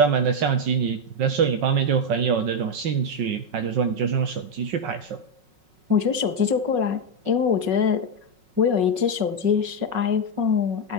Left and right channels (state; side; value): late; left; 5.4 ms